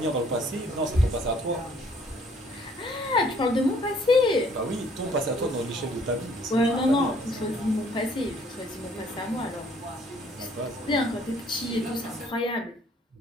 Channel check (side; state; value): both; normal; correlation 0.60